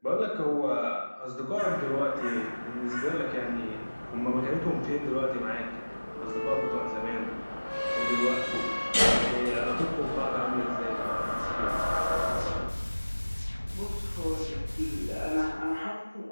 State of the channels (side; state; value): both; inverted; correlation -1.00